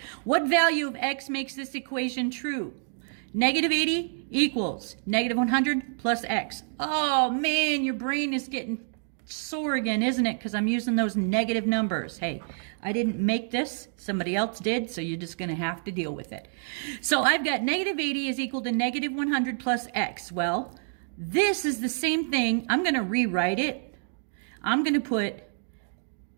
What value of x makes this equation true? Negative 80 equals negative 100 plus x. Oh, man, your brain is getting sore again, isn't it? Because I'm using those negative numbers. Hey, I didn't make this. Somebody else did, so you're just going to have to deal with it. So I've got negative 80 is equal to negative 100 plus x. Well, this is the same thing. I'm going to rewrite it. I'm going to put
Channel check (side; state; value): left; silent; digital silence